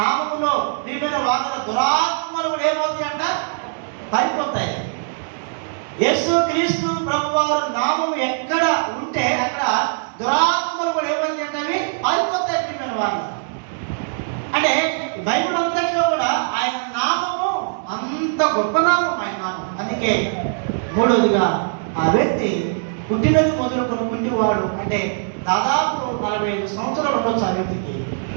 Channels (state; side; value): silent; left; digital silence